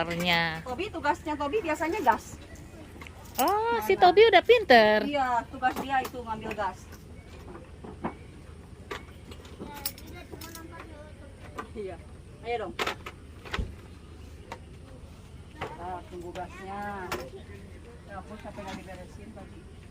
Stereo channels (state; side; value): identical; both; correlation 1.00